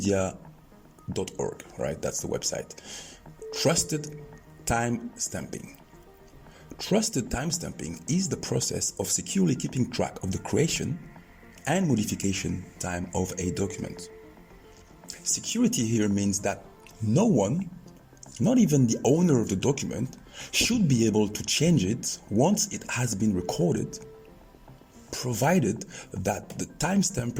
right? That's the website. Trusted time stamping. Trusted timestamping is the process of securely keeping track of the creation and modification time of a document. Security here means that no one, not even the owner of the document, should be able to change it once it has been recorded, provided that the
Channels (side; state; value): both; identical; correlation 1.00